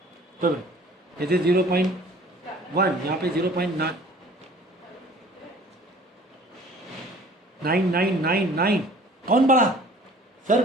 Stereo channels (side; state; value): both; normal; correlation 0.50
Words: तो जैसे 0.1 यहाँ पे 0.9999। कौन बड़ा सर,